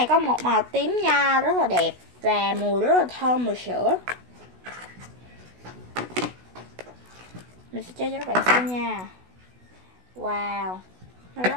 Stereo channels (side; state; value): left; late; 16 ms